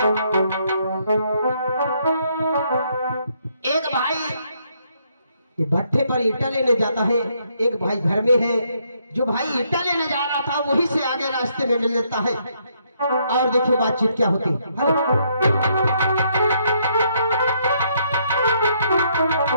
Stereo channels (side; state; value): both; inverted; correlation -0.72